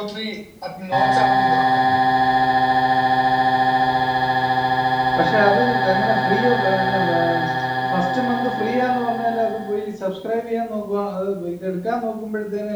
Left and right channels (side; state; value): both; identical; correlation 1.00